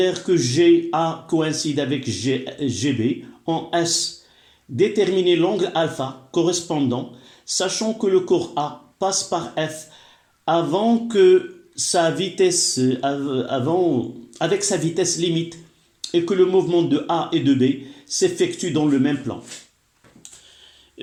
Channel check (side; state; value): both; identical; correlation 1.00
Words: que GA coïncide avec GB. En S, déterminer l'angle alpha correspondant, sachant que le corps A passe par F avec sa vitesse limite et que le mouvement de A et de B s'effectue dans le même plan.